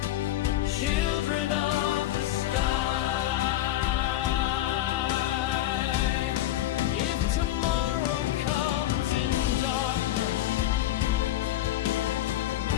Children of the sky. If tomorrow comes in darkness,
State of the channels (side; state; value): right; quieter; 13.8 dB